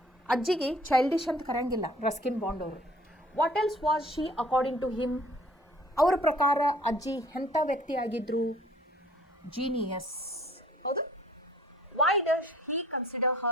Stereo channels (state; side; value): normal; both; correlation 0.53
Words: ಅಜ್ಜಿಗೆ childish ಅಂತ ಕರೆಯಂಗಿಲ್ಲ Ruskin Bond ಅವರು. What else was she according to him? ಅವರ ಪ್ರಕಾರ ಅಜ್ಜಿ ಎಂಥ ವ್ಯಕ್ತಿ ಆಗಿದ್ರು? ಜೀನಿಯಸ್. ಹೌದು. Why does he consider